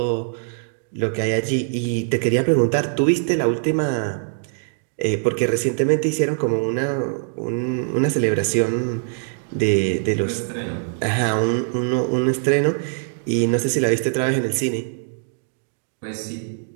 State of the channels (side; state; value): left; silent; digital silence